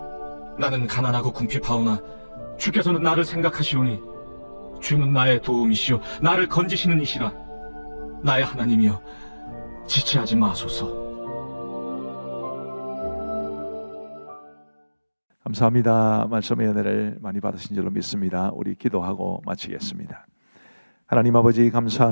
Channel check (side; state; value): both; inverted; correlation -1.00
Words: 나는 가난하고 궁핍하오나 주께서는 나를 생각하시오니 주는 나의 도움이시오 나를 건지시는 이시라. 나의 하나님이여, 지체하지 마소서. 감사합니다. 말씀의 은혜를 많이 받으신 줄로 믿습니다. 우리 기도하고 마치겠습니다. 하나님 아버지